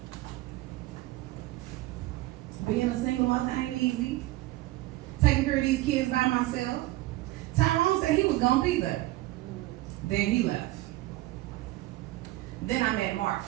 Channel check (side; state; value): left; quieter; 17.8 dB